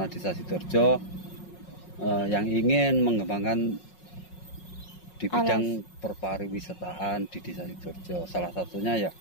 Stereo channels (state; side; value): late; right; 5.5 ms